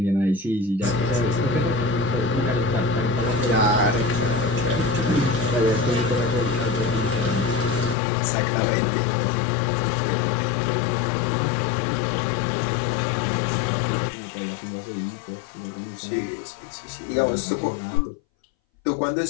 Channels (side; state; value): right; drops out; at 8.0 s